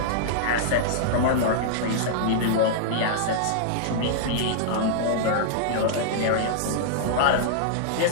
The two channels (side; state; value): both; different; correlation -0.02